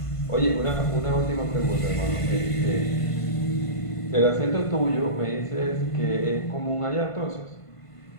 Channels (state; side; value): late; right; 1.5 ms